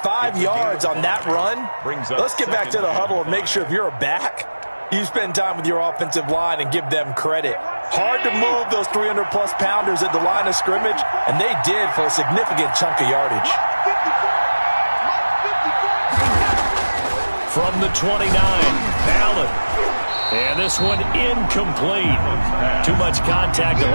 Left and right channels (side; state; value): both; inverted; correlation -1.00